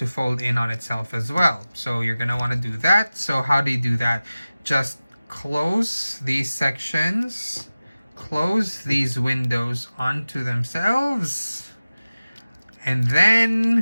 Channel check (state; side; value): inverted; both; correlation -0.96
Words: fold in on itself as well. So you're going to want to do that. So how do you do that? Just close these sections. Close these windows onto themselves. And